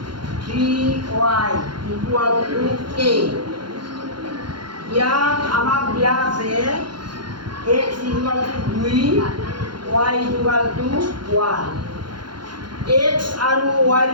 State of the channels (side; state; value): left; late; 0.72 ms